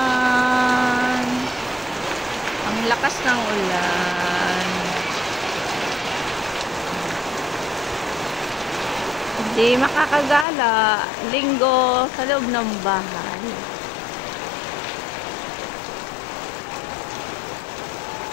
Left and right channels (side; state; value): right; drops out; at 10.5 s